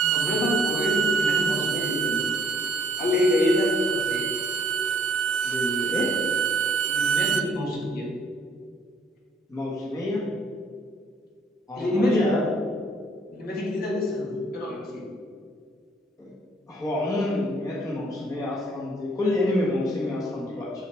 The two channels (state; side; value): normal; both; correlation 0.63